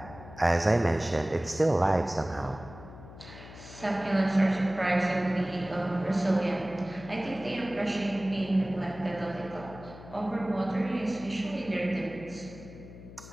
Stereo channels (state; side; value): noise; left; hum, 16 dB below the sound